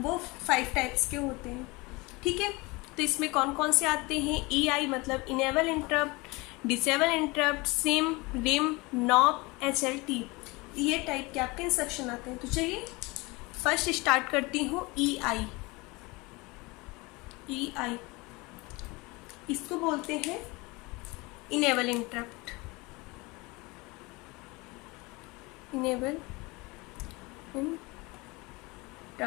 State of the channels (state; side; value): quieter; right; 24.6 dB